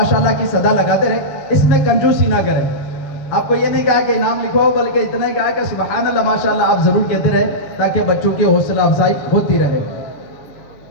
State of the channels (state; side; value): late; right; 6.6 ms